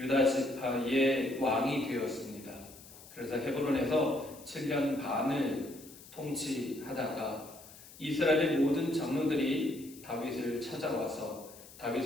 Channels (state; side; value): noise; left; hiss, 19 dB below the sound